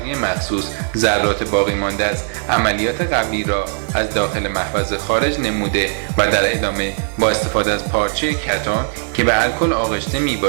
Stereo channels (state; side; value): silent; left; digital silence